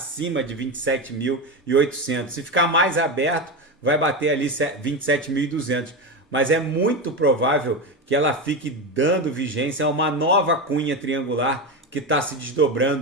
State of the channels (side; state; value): both; normal; correlation 0.17